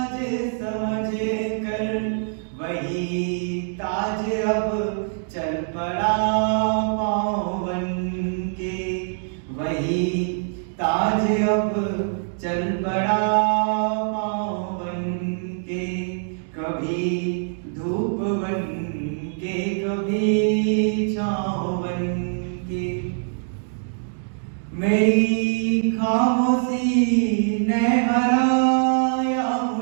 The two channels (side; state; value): left; silent; digital silence